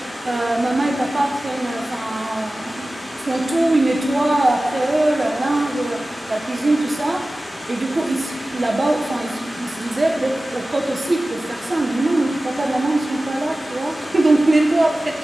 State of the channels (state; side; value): normal; both; correlation 0.96